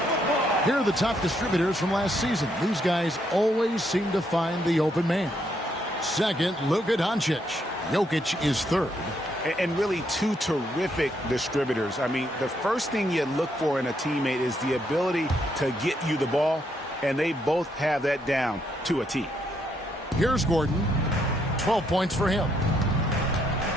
Here are the top distributors from last season. These guys always seem to find the open man. Second, Luka Doncic. Jokic is third. And really two terrific distributors. I mean, the first thing you look for in a teammate is the ability to get you the ball, and they both have that down to a T. Here's Gordon. 12 points for him.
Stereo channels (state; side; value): normal; both; correlation 0.75